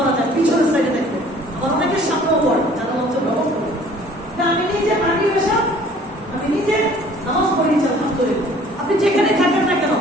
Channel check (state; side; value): normal; both; correlation 0.53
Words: যায়, পিছনের সাইডে দেখবে। আবার অনেকের সামনেও পড়ে যারা লঞ্চের ব্যবহার করে। আমি নিজে মাটি পেশা, আমি নিজে নামাজ পড়িয়েছি, আলহামদুলিল্লাহ। আপনি যেখানে থাকেন না কেন,